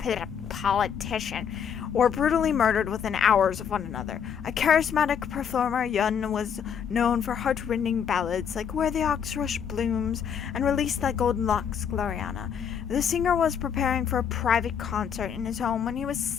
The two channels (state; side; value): quieter; right; 7.7 dB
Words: politician, were brutally murdered within hours of one another. A charismatic performer, Yun was known for heart-rending ballads like Where the Ox Rush Blooms and Release Thy Golden Locks, WaraAina. The singer was preparing for a private concert in his home when he was